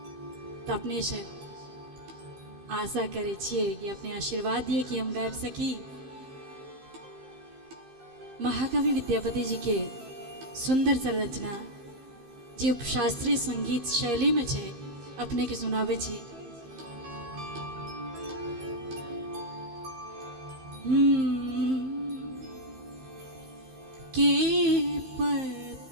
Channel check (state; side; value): late; left; 15 ms